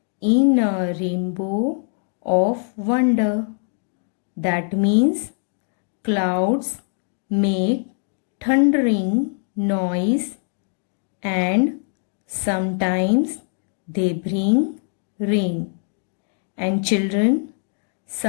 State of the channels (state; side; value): silent; right; 57 dB below the other